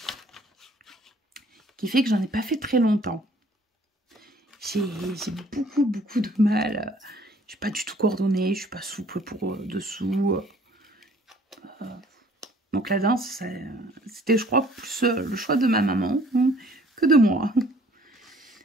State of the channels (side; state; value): both; normal; correlation 0.57